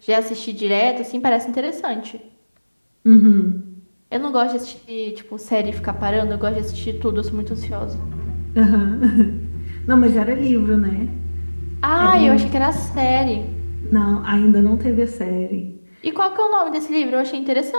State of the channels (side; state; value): both; inverted; correlation -1.00